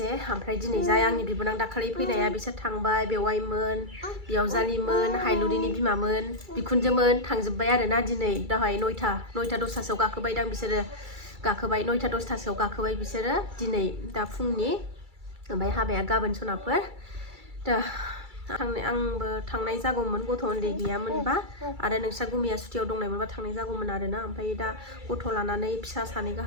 ओमफ्राय दिनै जाय आंनि बिबोनां दाखालि फैनाया बिसोर थांबाय बेवाइमोन बियावजालिमोन हायलुरिनि बिमामोन बिखुनजोमोन थांजोब्बाय आरोना दिनै दाहाय नयथा 10:00 गाखोबायदां बिसोरो गाखोबाय 9:00-10:00 गाखोबाय बिसोरो दिनै दा फुंनि ओमफ्राय हाबाया गाबोन सनाफोर दा आंबो थांनाय जागौमोन गथ' उन्दै गैयामोनबा आरो नोंस्रा गुमिया सुटियाव दंनायमोनबा थांनाय जागौमोन आरोना ओमफ्राय दा गथ' लानानै फिसा सानै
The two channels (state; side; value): late; left; 2.3 ms